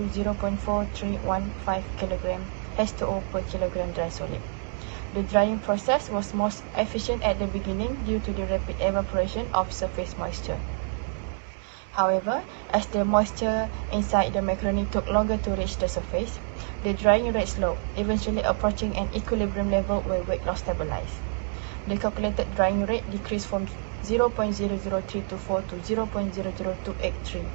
0.4315 kg H2O per kilogram dry solid. The drying process was most efficient at the beginning due to the rapid evaporation of surface moisture. However, as the moisture inside the macaroni took longer to reach the surface, the drying rate slowed, eventually approaching an equilibrium level where weight loss stabilized. The calculated drying rate decreased from 0.00324 to 0.00283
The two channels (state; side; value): silent; left; 60 dB below the other